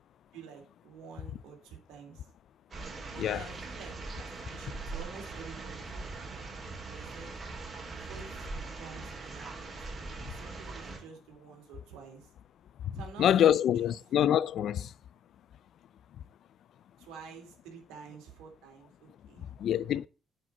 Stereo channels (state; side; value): quieter; right; 7.6 dB